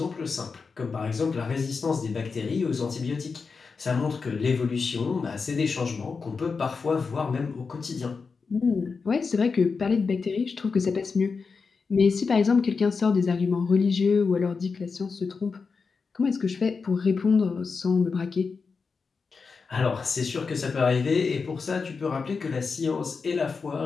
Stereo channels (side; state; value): right; quieter; 4.9 dB